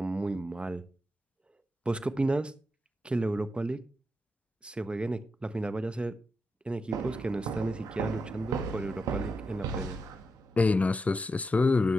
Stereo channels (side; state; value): both; normal; correlation 0.86